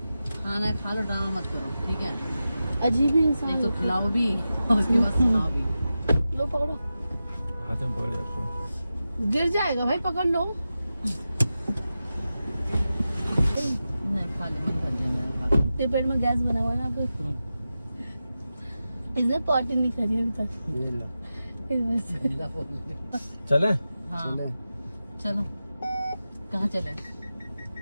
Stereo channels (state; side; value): inverted; both; correlation -0.92